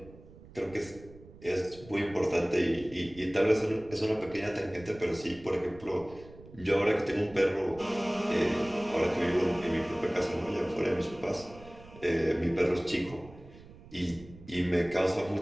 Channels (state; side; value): noise; right; rumble, 20 dB below the sound